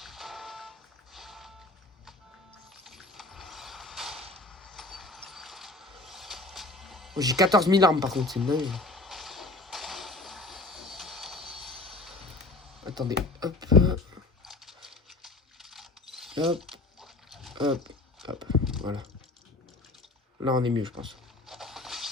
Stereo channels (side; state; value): right; quieter; 3.0 dB